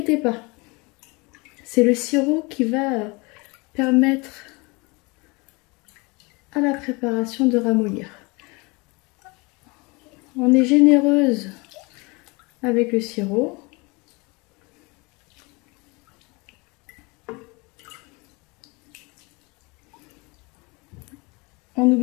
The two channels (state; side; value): quieter; right; 27.1 dB